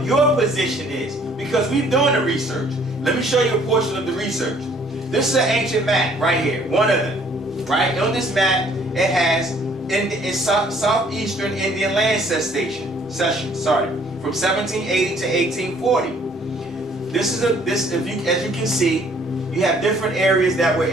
your position is. Because we've done the research. Let me show you a portion of the research. This is an ancient map right here, one of them. Right? On this map, it has in southeastern Indian land cession, from 1780 to 1840. As you can see, you have different areas that were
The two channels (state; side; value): normal; both; correlation 0.60